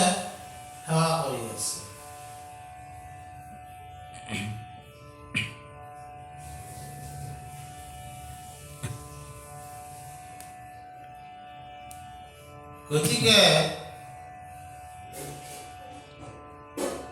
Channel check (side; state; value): both; identical; correlation 1.00